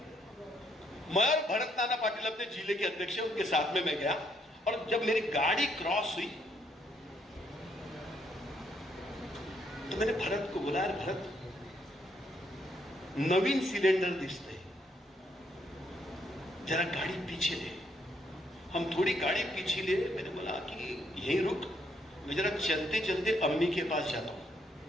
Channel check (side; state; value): both; normal; correlation 0.72